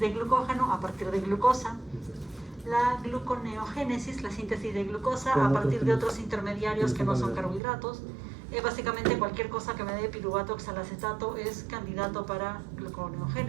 glucógeno a partir de glucosa. La gluconeogénesis, la síntesis de glucosa a partir de otros intermediarios que no son carbohidratos. Básicamente cualquier cosa que me dé piruvato oxalacetato es candidato para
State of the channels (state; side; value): drops out; left; at 7.6 s